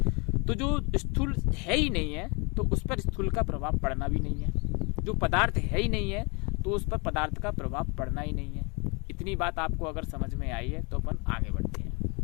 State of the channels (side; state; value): right; quieter; 30.8 dB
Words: तो जो स्थूल है ही नहीं है तो उस पर स्थूल का प्रभाव पड़ना भी नहीं है। जो पदार्थ है ही नहीं है तो उस पर पदार्थ का प्रभाव पड़ना ही नहीं है। इतनी बात आपको अगर समझ में आई है तो अपन आगे बढ़ते हैं।